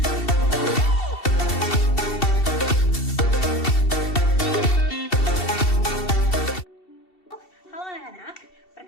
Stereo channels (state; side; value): late; right; 2.7 ms